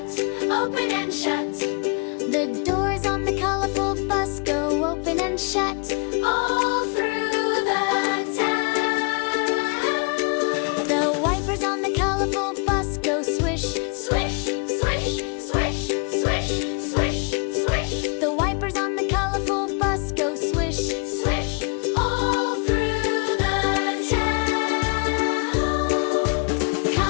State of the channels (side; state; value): right; quieter; 36.4 dB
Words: open and shut. The doors on the colorful bus go open and shut all through the town. The wipers on the colorful bus go swish, swish, swish, swish, swish, swish, swish. The wipers on the colorful bus go swish, swish, all through the town.